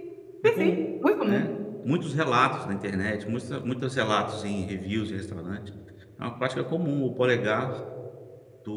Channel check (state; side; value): identical; both; correlation 1.00